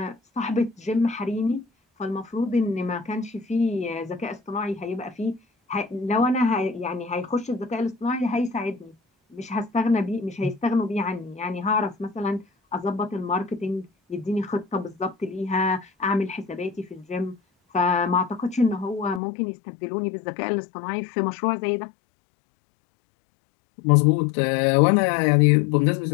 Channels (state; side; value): drops out; right; at 19.2 s